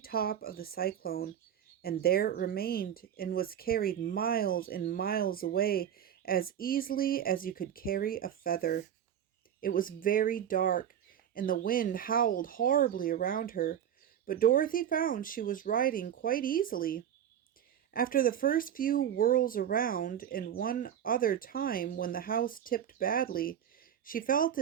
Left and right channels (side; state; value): left; quieter; 9.7 dB